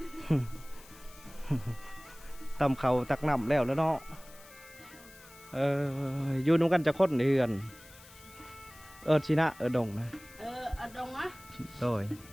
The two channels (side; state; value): left; noise; hiss, 21 dB below the sound